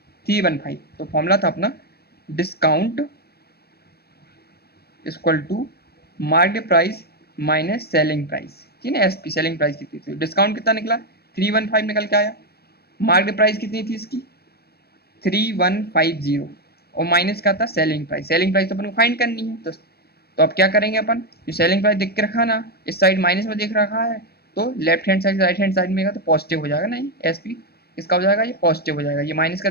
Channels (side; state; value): right; late; 0.46 ms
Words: 315। तो फॉर्मूला था अपना discount equal to market price minus selling price, ठीक है। एसपी सेलिंग प्राइस कितनी थी, डिस्काउंट कितना निकला, 315 निकल के आया। मार्केट प्राइस कितनी थी इसकी, 3150 और माइनस का था सेलिंग प्राइस। सेलिंग प्राइस तो अपन को फाइंड करनी है। तो अब क्या करेंगे अपन, जो सेलिंग प्राइस देख के रखा ना, इस साइड माइनस में देख रखा है, तो left hand side right hand side में तो पॉजिटिव हो जाएगा ना, ये एसपी इसका हो जाएगा, ये पॉजिटिव हो जाएगा। ये माइनस का